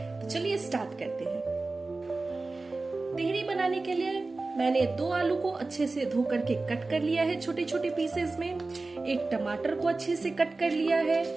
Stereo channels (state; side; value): quieter; left; 3.5 dB